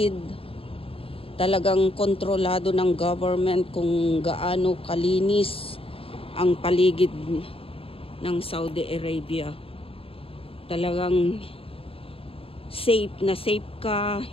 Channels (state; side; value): late; right; 0.27 ms